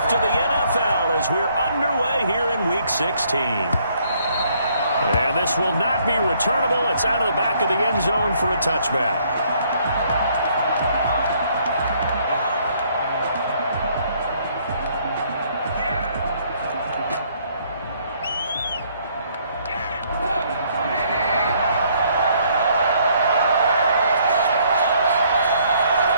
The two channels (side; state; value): both; inverted; correlation -0.66